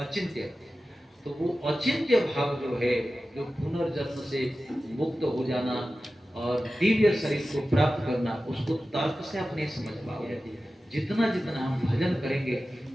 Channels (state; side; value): normal; both; correlation 0.94